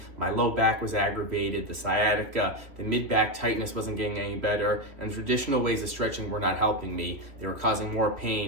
My low back was aggravated, the sciatica, the mid-back tightness wasn't getting any better, and traditional ways of stretching were not helping me. They were causing more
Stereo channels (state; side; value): late; left; 3.1 ms